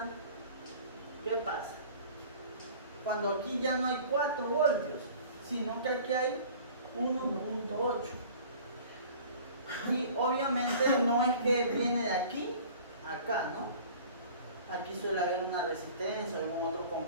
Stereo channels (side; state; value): both; inverted; correlation -0.46